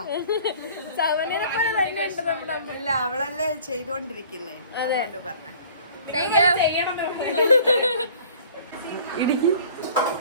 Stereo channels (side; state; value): both; inverted; correlation -0.49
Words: ഇല്ല, അവളല്ലേ ചെയ്തോണ്ടിരിക്കുന്നേ. അതുകൊണ്ട് പറഞ്ഞ